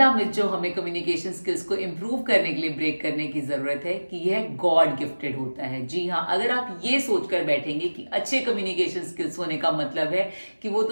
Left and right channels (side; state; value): both; inverted; correlation -1.00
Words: मिथ जो हमें कम्युनिकेशन स्किल्स को इंप्रूव करने के लिए ब्रेक करने की जरूरत है कि यह गॉड गिफ्टेड होता है। जी हाँ, अगर आप ये सोचकर बैठेंगे कि अच्छे कम्युनिकेशन स्किल्स होने का मतलब है कि वो